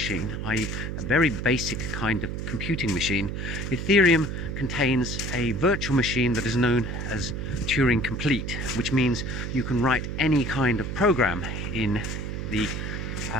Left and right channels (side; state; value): right; noise; hum, 4 dB below the sound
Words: i.e. a very basic kind of computing machine, Ethereum contains a virtual machine that is known as Turing complete, which means you can write any kind of program in the